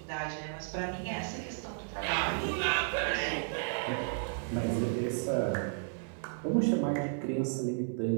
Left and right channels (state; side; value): silent; left; 55 dB below the other